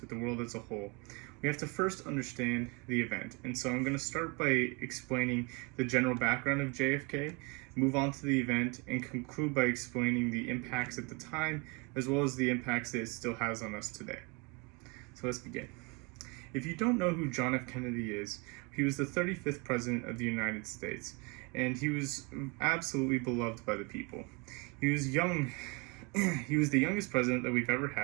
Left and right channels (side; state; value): left; quieter; 30.2 dB